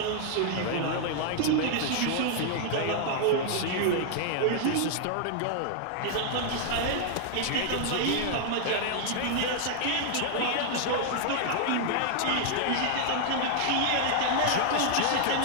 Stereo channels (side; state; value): both; different; correlation 0.00